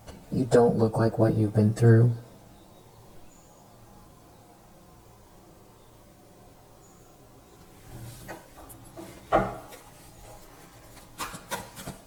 You don't look like what you've been through.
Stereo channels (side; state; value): both; identical; correlation 1.00